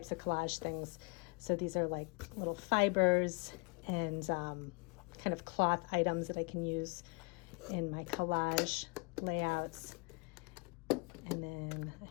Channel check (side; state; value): right; quieter; 30.6 dB